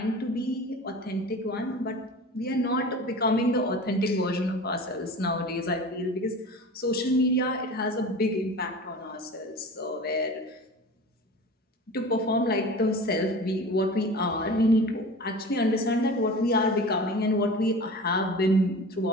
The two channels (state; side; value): normal; both; correlation 0.36